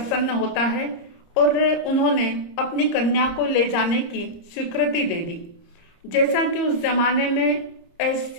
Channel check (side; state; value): right; late; 30 ms